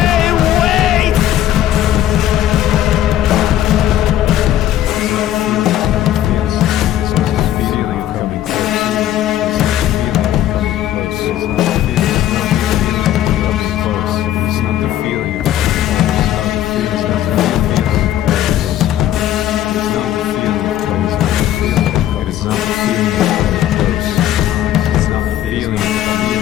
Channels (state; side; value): quieter; right; 12.2 dB